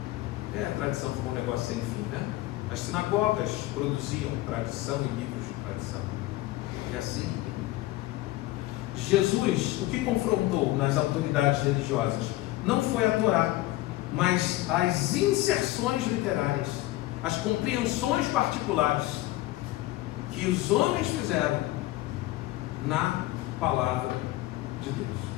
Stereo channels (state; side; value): quieter; right; 17.3 dB